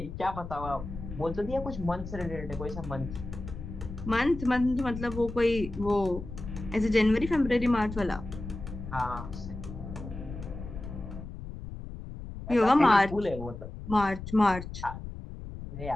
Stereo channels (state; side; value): noise; left; rumble, 10 dB below the sound